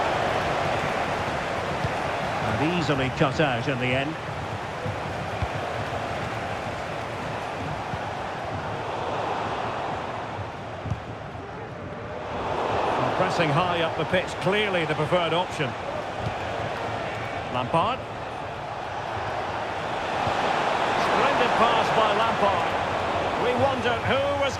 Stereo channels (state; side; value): identical; both; correlation 1.00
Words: And easily cut out in the end. Pressing high up the pitch, clearly the preferred option. Lampard. Splendid pass by Lampard. We wondered who was